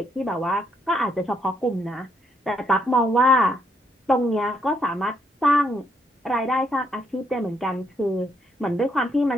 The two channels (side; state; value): both; normal; correlation 0.74